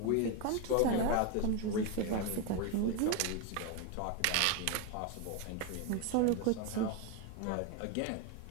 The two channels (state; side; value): different; both; correlation 0.02